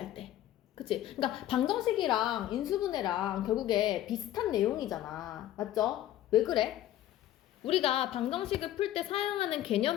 때. 그치? 그러니까 방정식이랑 인수분해랑 결국에 비슷한 내용이잖아. 맞죠? 왜 그래? 우리가 방정식을 풀 때 사용하는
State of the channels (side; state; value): right; quieter; 13.0 dB